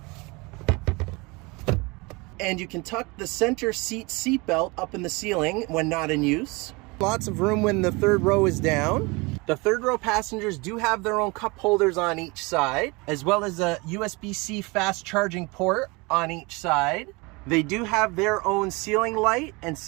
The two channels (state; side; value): quieter; left; 26.2 dB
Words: And you can tuck the center seat belt up in the ceiling when not in use. Lots of room when the third row is down. The third row passengers do have their own cup holders on each side, as well as a USB-C fast charging port on each side. They do have their own ceiling light and